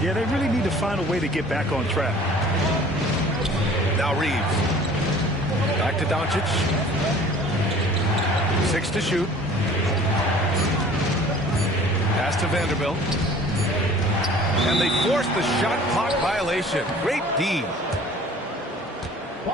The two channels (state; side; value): normal; both; correlation 0.48